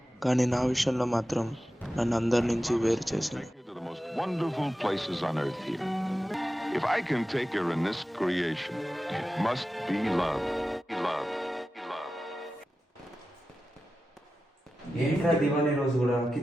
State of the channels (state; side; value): normal; both; correlation 0.93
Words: కానీ నా విషయంలో మాత్రం నన్ను అందరి నుంచి వేరు చేసింది. Take you to the most wonderful places on earth here. If I can take her in this creation, it must be love. Love. Love. ఏంట్రా దివాళీ రోజు కూడా